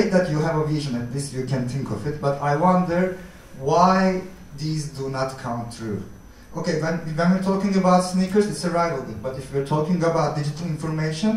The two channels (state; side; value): identical; both; correlation 1.00